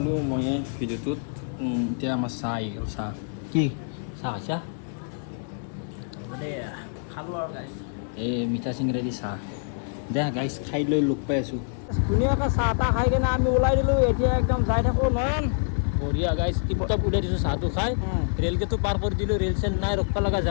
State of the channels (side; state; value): right; silent; 61 dB below the other